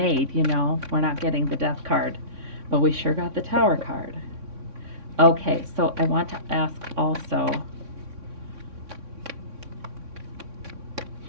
We're not getting the Death card, but we sure got the Tower card. Okay, so I want to ask also,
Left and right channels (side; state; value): left; late; 3.6 ms